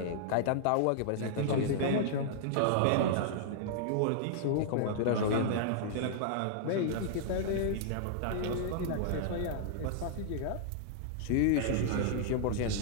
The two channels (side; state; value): both; different; correlation -0.01